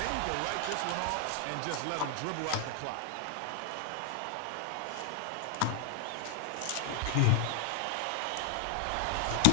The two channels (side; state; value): both; different; correlation 0.00